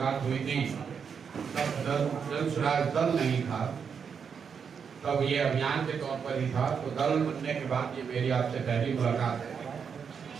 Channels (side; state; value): left; quieter; 6.6 dB